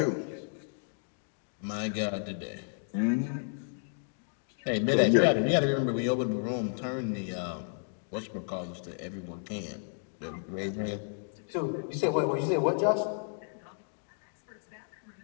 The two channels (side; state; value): right; silent; 56 dB below the other